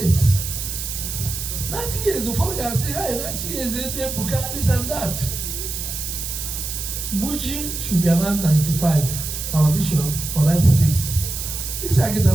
90 years, the father can say, hey, 90 years, they put this and that. Buji should be around 95, our bishop, or 96. This I get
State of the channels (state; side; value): noise; right; hiss, 5 dB below the sound